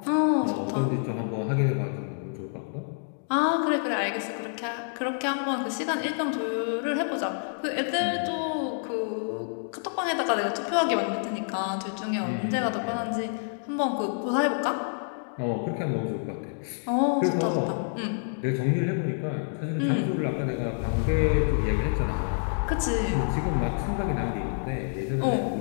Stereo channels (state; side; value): silent; right; digital silence